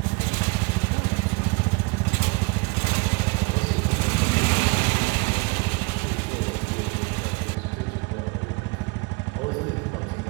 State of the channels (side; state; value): left; quieter; 27.7 dB